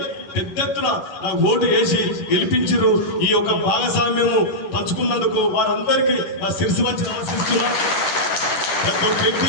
పెద్ద ఎత్తున నాకు ఓటు వేసి గెలిపించారు. ఈ యొక్క భాగస్వామ్యము పంచుకున్నందుకు వారందరికీ నా శిరసు వంచి నమస్కరిస్తున్నా. ప్రతి ఒక్క వ్యక్తి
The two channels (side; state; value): right; late; 11 ms